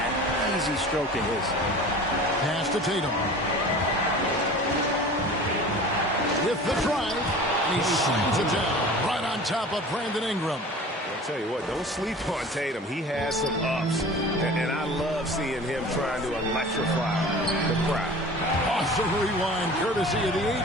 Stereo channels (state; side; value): normal; both; correlation 0.40